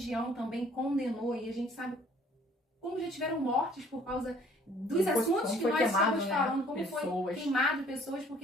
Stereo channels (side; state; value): both; normal; correlation 0.57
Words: também condenou, e a gente sabe como já tiveram mortes por causa dos assuntos que nós estamos falando, como foi queimado pessoas